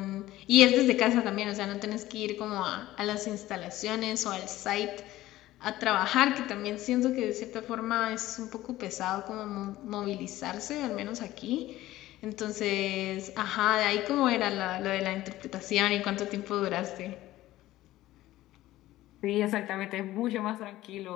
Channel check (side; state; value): right; quieter; 15.8 dB